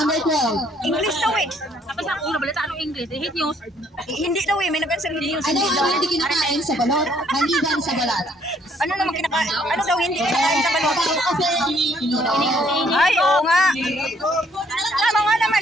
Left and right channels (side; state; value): both; normal; correlation 0.65